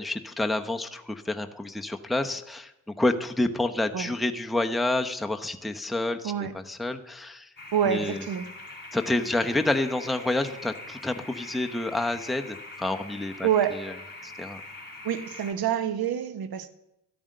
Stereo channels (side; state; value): both; normal; correlation 0.58